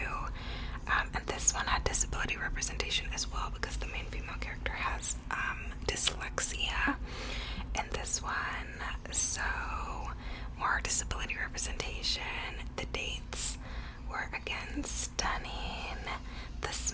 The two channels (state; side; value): identical; both; correlation 1.00